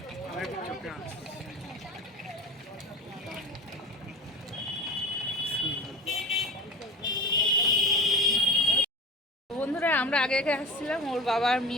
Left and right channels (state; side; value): normal; both; correlation 0.32